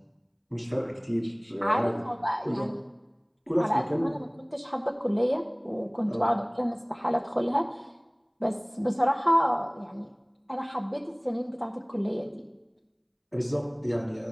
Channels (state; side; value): identical; both; correlation 1.00